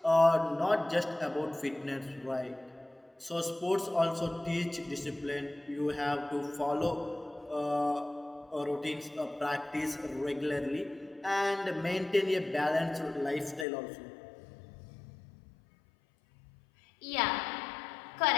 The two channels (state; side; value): drops out; right; at 13.7 s